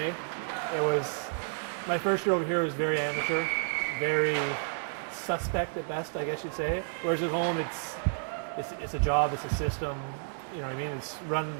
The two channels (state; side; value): silent; left; 57 dB below the other